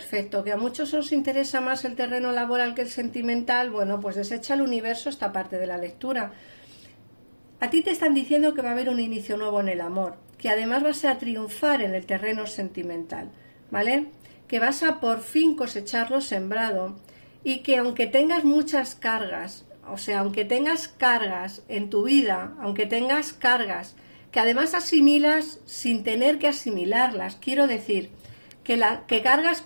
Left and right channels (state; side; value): inverted; both; correlation -1.00